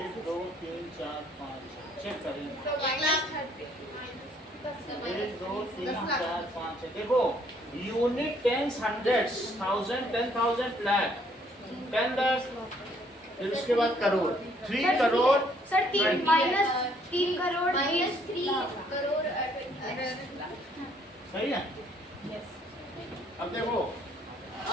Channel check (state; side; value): normal; both; correlation 0.65